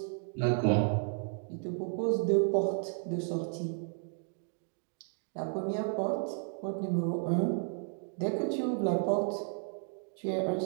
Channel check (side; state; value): left; silent; 56 dB below the other